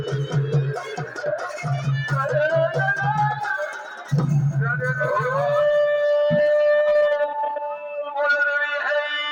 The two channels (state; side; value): identical; both; correlation 1.00